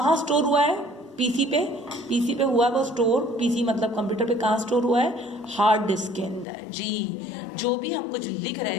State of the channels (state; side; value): drops out; right; at 6.5 s